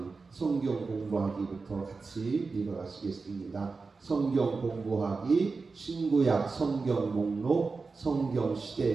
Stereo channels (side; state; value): left; quieter; 4.3 dB